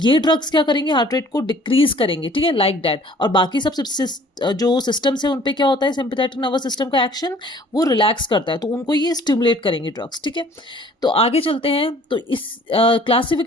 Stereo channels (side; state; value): both; normal; correlation 0.54